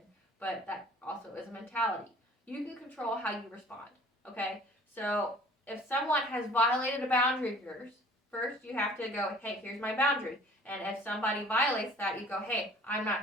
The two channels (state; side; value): normal; both; correlation 0.51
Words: But that also is a mentality. You can control how you respond. Okay? So if someone has violated a boundary of yours, first you have to go, hey, here's my boundary. And if somebody violates that, you go, hey, I'm